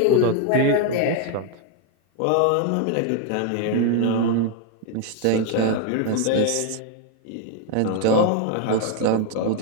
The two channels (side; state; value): both; different; correlation 0.01